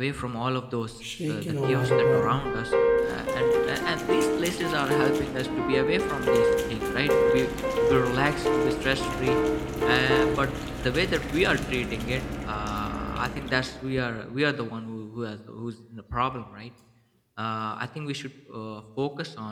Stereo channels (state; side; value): identical; both; correlation 1.00